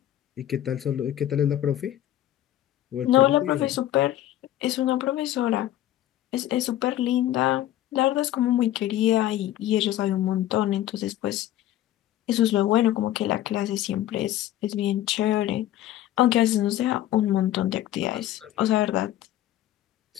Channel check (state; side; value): quieter; right; 13.0 dB